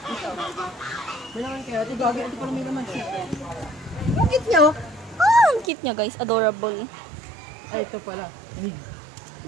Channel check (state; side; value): drops out; left; at 5.7 s